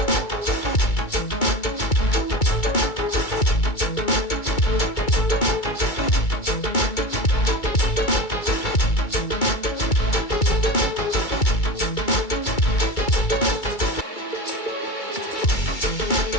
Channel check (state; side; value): late; right; 2.3 ms